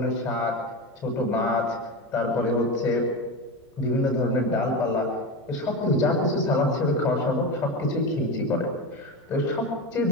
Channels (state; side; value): normal; both; correlation 0.20